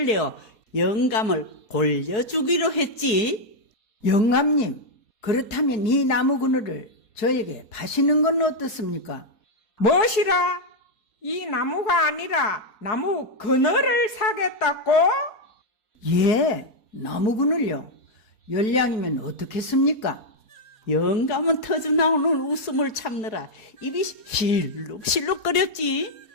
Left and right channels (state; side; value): late; right; 4.7 ms